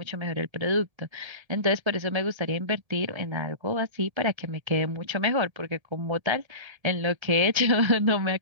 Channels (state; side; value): late; left; 1.7 ms